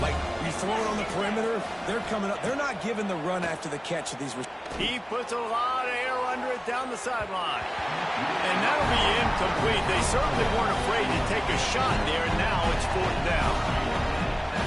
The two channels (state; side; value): identical; both; correlation 1.00